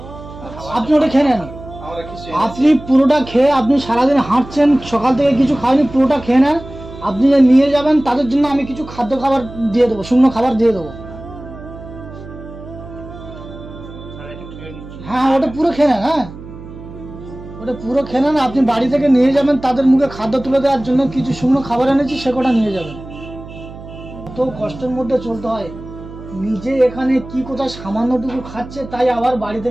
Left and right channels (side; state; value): right; noise; hum, 15 dB below the sound